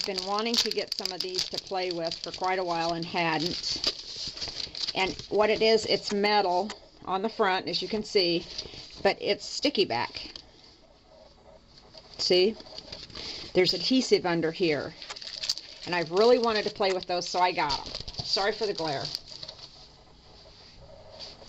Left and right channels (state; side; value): identical; both; correlation 1.00